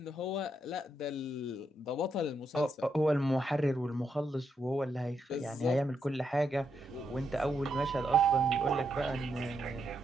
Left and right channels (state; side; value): normal; both; correlation 0.80